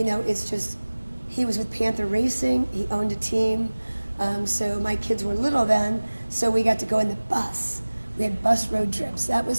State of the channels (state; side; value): inverted; both; correlation -1.00